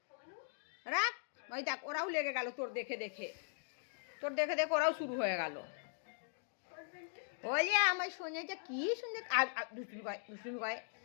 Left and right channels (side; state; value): right; silent; digital silence